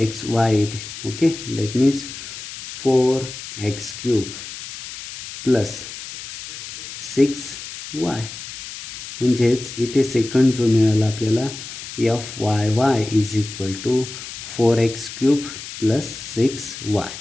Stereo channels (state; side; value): noise; left; hiss, 11 dB below the sound